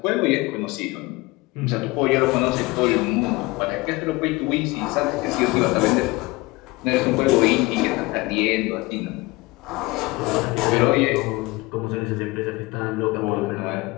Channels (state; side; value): quieter; right; 22.8 dB